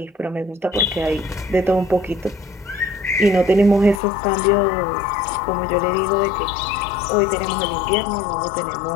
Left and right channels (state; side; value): drops out; right; at 4.0 s